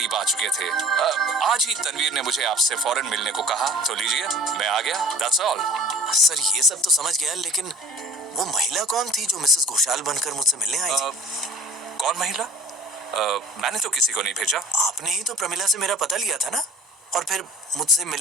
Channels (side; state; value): both; normal; correlation 0.45